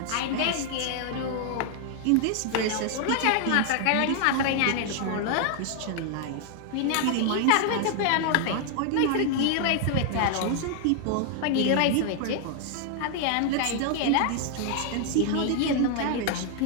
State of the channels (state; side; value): different; both; correlation 0.00